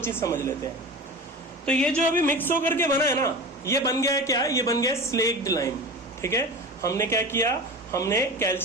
समझ लेते हैं। तो ये जो अभी मिक्स होकर के बना है ना, ये बन गया है क्या, ये बन गया है स्लेक्ड लाइम। ठीक है, हमने क्या किया, हमने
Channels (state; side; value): normal; both; correlation 0.31